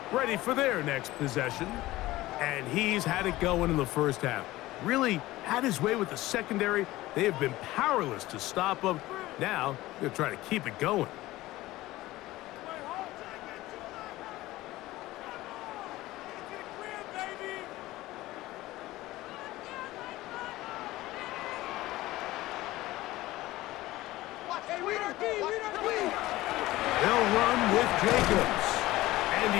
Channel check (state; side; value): quieter; right; 17.5 dB